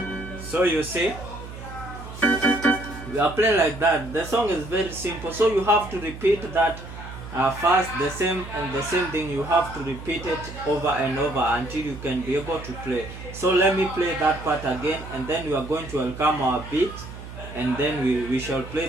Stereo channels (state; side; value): noise; right; hum, 12 dB below the sound